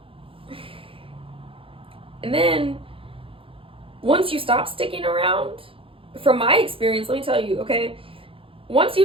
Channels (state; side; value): late; left; 0.26 ms